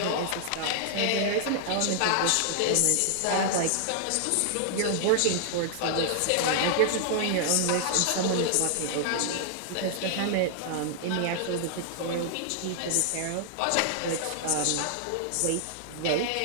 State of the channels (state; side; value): different; both; correlation -0.01